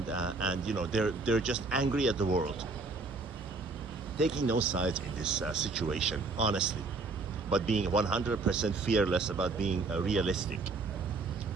they're just angry at the world, taking no sides in this situation, honestly, but being 100% fearless about being realistic.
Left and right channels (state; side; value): quieter; left; 3.8 dB